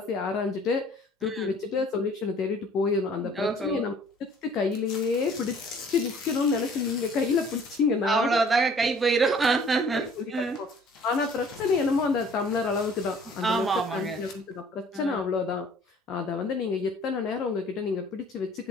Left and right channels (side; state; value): both; normal; correlation 0.53